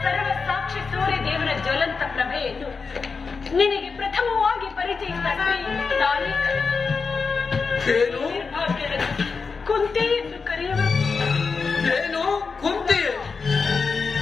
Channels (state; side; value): quieter; right; 4.9 dB